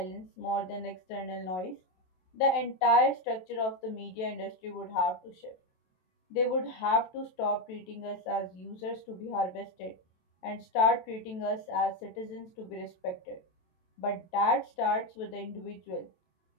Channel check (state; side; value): late; right; 27 ms